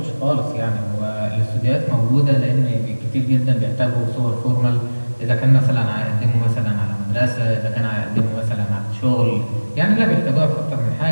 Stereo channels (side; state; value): both; inverted; correlation -1.00